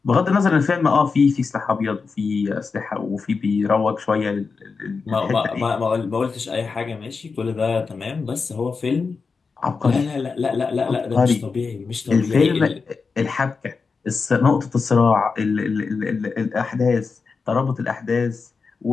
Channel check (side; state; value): right; quieter; 4.8 dB